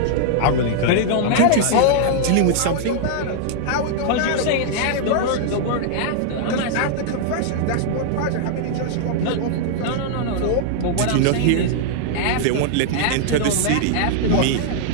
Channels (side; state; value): both; different; correlation -0.01